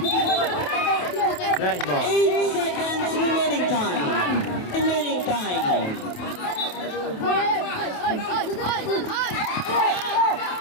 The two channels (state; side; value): late; right; 28 ms